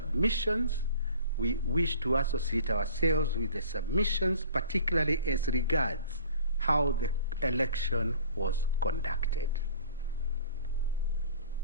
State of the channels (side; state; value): both; inverted; correlation -0.47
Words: We wish to associate ourselves with the submissions, particularly as regards how the election was conducted.